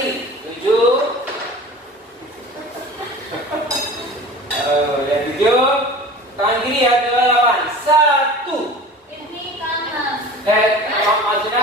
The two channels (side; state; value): both; normal; correlation 0.39